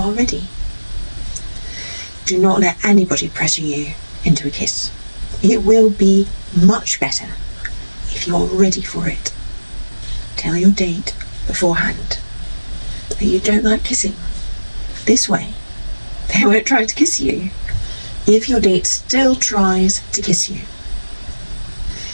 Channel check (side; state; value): both; inverted; correlation -1.00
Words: ready. Do not let anybody pressure you into a kiss. It will be much better if you are ready for it. Tell your date beforehand that you don't like kissing. This way, they won't try to kiss you if your date still tries to kiss you.